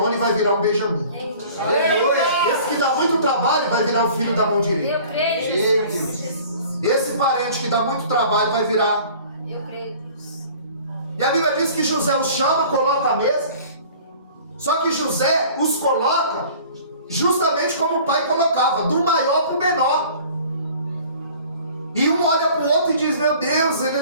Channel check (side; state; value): both; inverted; correlation -0.48